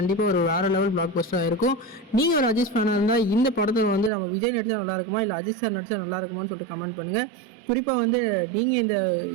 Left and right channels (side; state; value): left; drops out; at 4.1 s